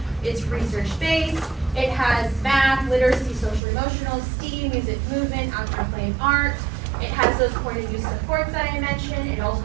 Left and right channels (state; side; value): drops out; left; at 3.6 s